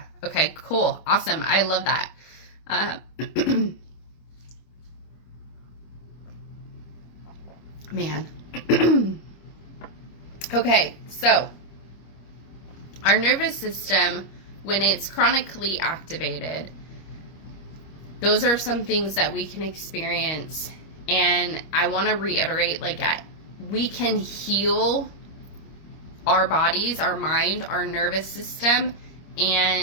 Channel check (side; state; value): right; late; 25 ms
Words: Okay, cool. Awesome. I love that. Man. Okay, so our nervous system, when it's chronically activated, those are some things that we can experience. And I want to reiterate, like, we can heal our bodies, our mind, our nervous system,